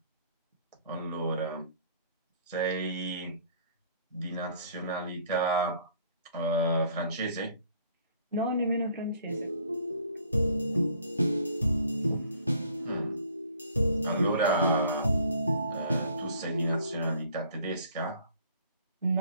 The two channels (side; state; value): both; inverted; correlation -0.58